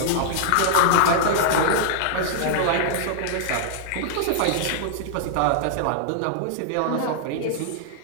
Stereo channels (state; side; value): different; both; correlation -0.01